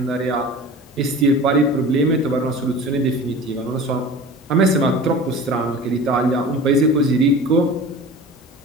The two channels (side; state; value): both; normal; correlation 0.38